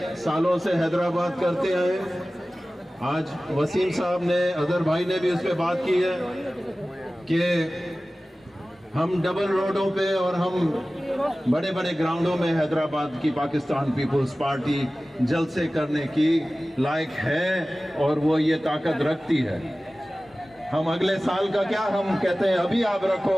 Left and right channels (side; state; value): both; normal; correlation 0.97